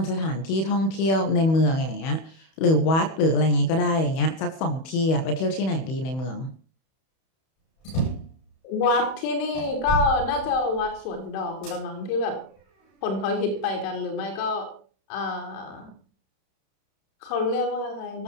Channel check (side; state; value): right; late; 31 ms